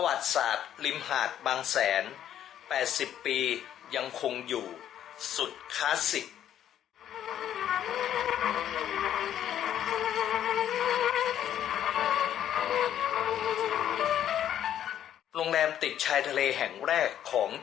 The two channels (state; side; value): quieter; right; 10.7 dB